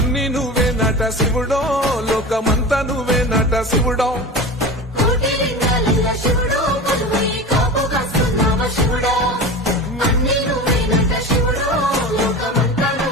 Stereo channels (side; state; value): both; normal; correlation 0.30